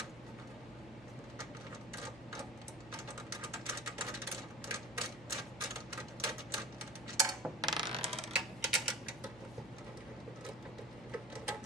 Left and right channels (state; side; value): normal; both; correlation 0.39